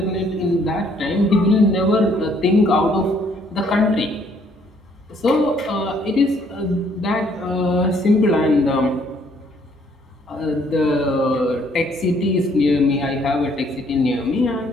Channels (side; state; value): both; normal; correlation 0.65